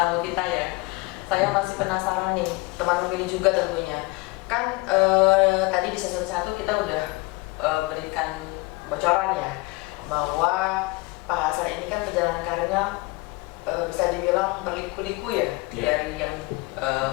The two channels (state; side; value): quieter; right; 24.1 dB